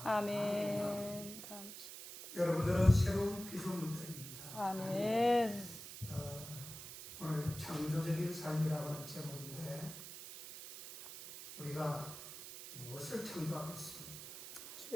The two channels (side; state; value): right; noise; hiss, 11 dB below the sound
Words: 아멘. 감사합니다. 여러분들은 새로운 피조물들입니다. 아멘. 오늘 창조적인 삶이라고 하는 제목인데 우리가 무엇을 창조하겠습니까?